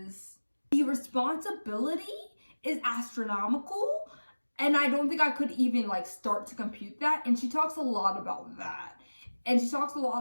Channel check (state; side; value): inverted; both; correlation -1.00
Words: the responsibility is astronomical. And I don't think I could even like start to compute that. And she talks a lot about that. And she talks a